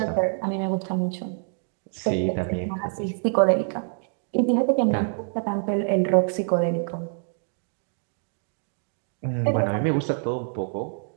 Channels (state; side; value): silent; left; 61 dB below the other